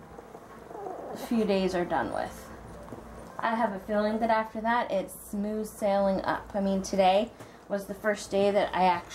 few days are done with. I have a feeling that after that, it's smooth sailing up. I mean, today was the first day that I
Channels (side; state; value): both; identical; correlation 1.00